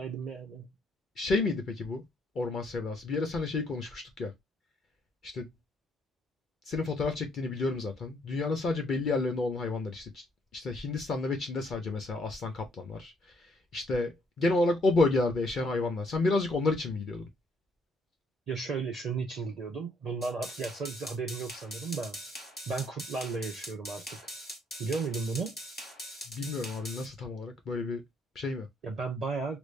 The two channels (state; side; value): normal; both; correlation 0.69